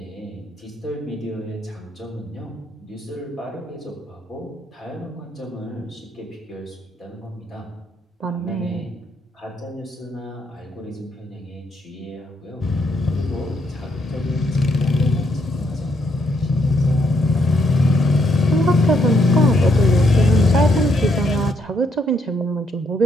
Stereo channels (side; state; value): both; normal; correlation 0.75